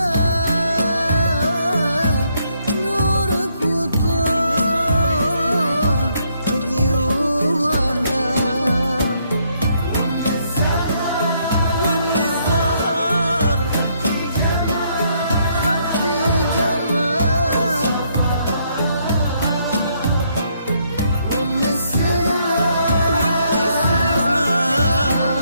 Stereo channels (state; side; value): inverted; both; correlation -0.72